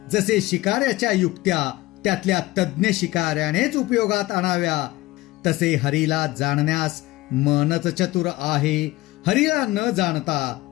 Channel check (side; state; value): right; quieter; 18.7 dB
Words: जसे शिकाऱ्याच्या युक्त्या त्यातल्या तज्ञ शिकाऱ्यानेच उपयोगात आणाव्या, तसे हरीला जाणण्यास मनच चतुर आहे। हरीला न जाणता